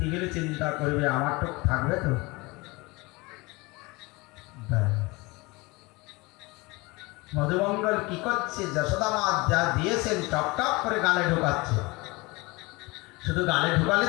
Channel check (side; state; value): right; quieter; 24.2 dB